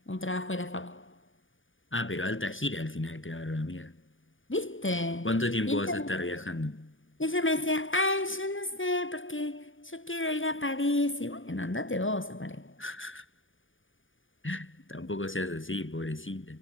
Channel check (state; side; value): late; right; 0.57 ms